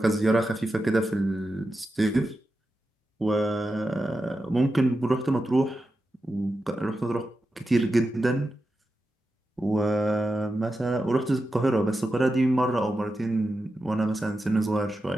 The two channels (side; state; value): both; normal; correlation 0.90